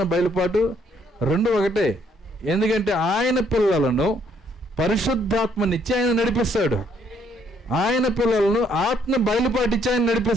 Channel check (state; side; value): normal; both; correlation 0.67